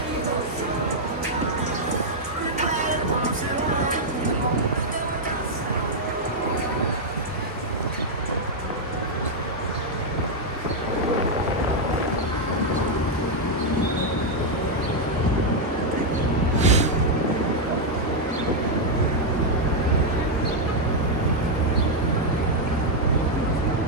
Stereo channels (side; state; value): both; normal; correlation -0.02